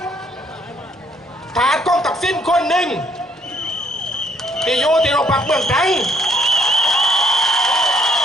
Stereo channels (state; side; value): normal; both; correlation 0.67